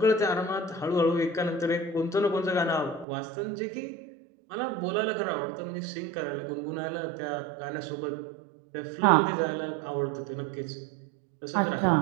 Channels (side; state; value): left; drops out; at 3.1 s